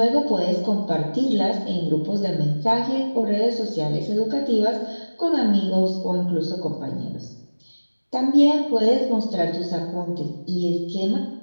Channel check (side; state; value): both; inverted; correlation -1.00